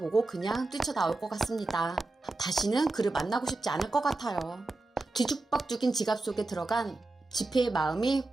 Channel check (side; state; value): left; quieter; 3.1 dB